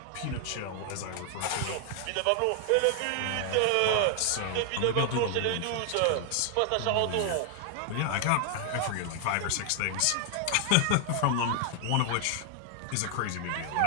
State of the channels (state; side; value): different; both; correlation 0.00